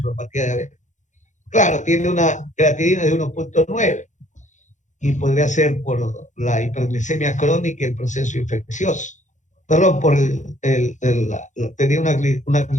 diabética. Claro, tiene una creatinina de 1.9 y podría ser por la hiperglicemia crónica y el proceso infeccioso. Perdón, tenía una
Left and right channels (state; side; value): late; right; 0.35 ms